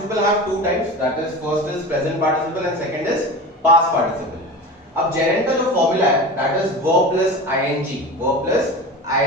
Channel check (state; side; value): normal; both; correlation 0.31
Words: have two types, that is first is present participle and second is past participle. अब gerund का जो फॉर्मूला है that is verb plus